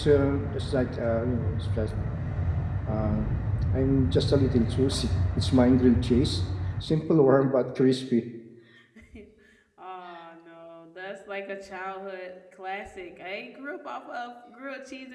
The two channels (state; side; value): identical; both; correlation 1.00